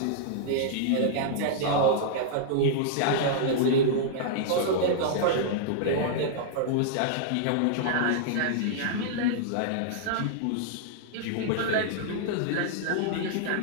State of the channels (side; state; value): both; different; correlation -0.02